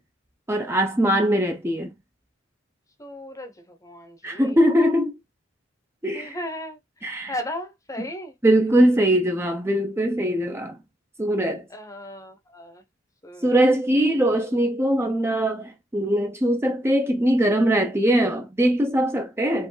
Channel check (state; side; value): normal; both; correlation 0.78